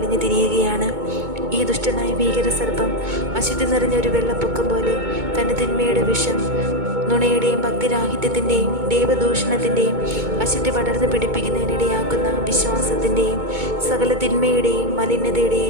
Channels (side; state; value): left; late; 2.2 ms